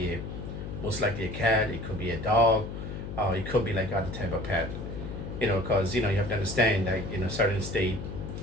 most likely a cat, it could be a dog, it could be like other type of pet. Because you have to understand that certain state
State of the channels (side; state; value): left; noise; hum, 7 dB below the sound